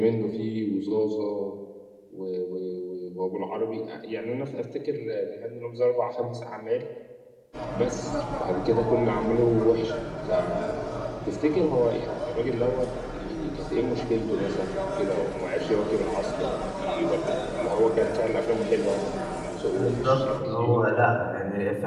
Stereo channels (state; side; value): identical; both; correlation 1.00